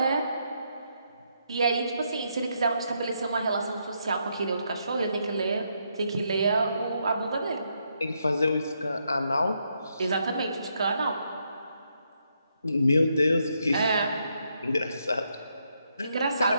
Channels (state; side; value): inverted; both; correlation -0.78